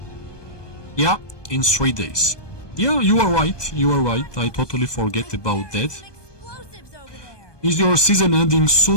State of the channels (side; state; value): right; late; 1.2 ms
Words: Yeah, in 3 days. Yeah, you are right. You are right. I totally forget about that. Some explosives over there. Is your season ending